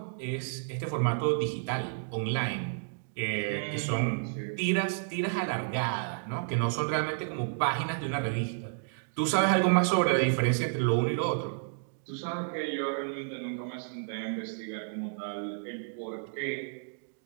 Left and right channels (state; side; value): silent; left; digital silence